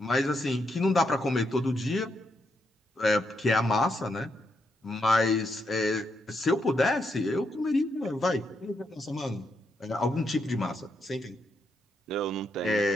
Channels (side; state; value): both; normal; correlation 0.79